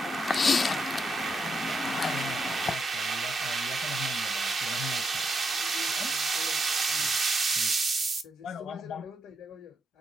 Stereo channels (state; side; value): normal; both; correlation 0.81